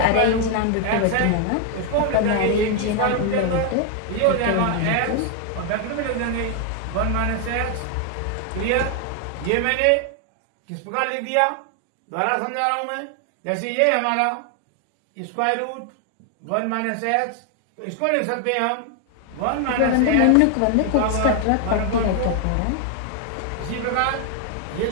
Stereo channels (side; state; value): both; different; correlation 0.00